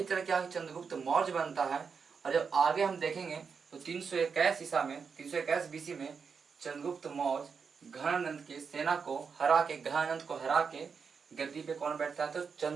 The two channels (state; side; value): quieter; left; 5.8 dB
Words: तरह क्या चंद्रगुप्त मौर्य बनता है। और जब आगे हम देखेंगे तो 321 ईसा में, 321 बीसी में चंद्रगुप्त मौर्य घनानंद की सेना को हरा के गद्दी पे कौन बैठता है, तो